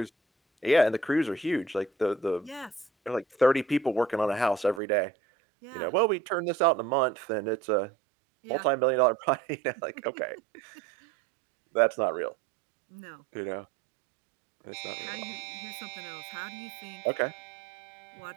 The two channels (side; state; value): left; drops out; at 4.8 s